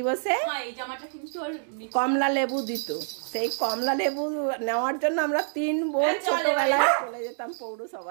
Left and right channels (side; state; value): left; silent; digital silence